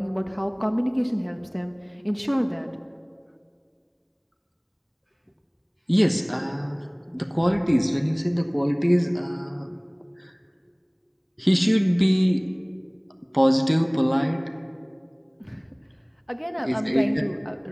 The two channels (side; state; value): both; identical; correlation 1.00